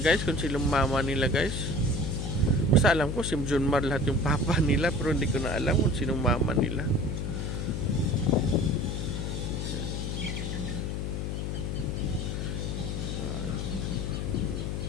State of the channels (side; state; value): left; noise; hum, 2 dB below the sound